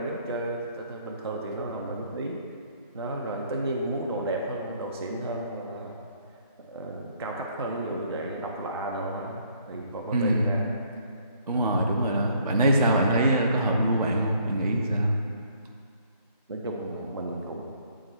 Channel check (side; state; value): both; inverted; correlation -0.64